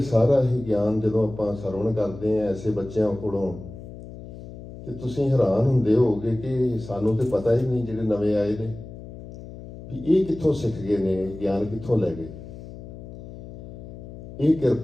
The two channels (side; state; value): left; noise; hum, 14 dB below the sound